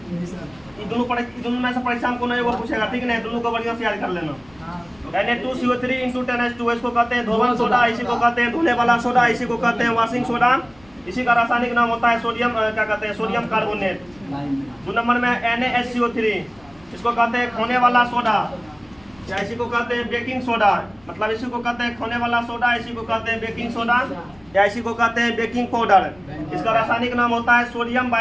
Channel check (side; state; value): left; noise; rumble, 28 dB below the sound